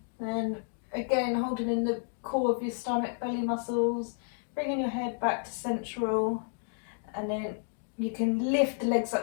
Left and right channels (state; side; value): silent; right; digital silence